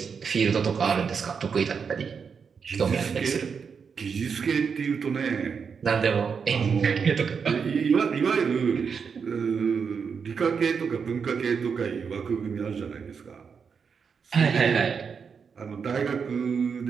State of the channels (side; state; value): left; quieter; 6.1 dB